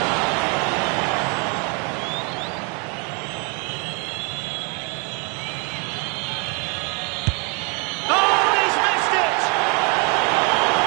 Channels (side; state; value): left; quieter; 33.4 dB